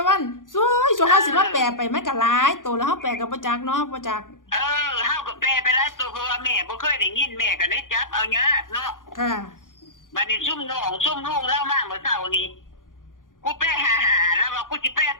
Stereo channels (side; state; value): right; late; 0.89 ms